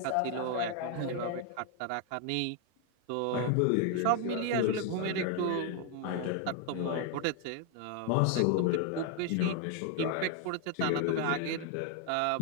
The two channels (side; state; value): both; different; correlation 0.00